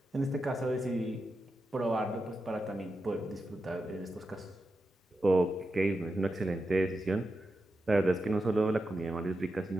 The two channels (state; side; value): normal; both; correlation 0.89